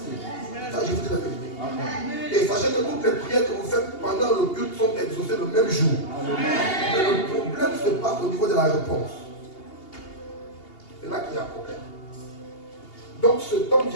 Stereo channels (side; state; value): right; late; 2.8 ms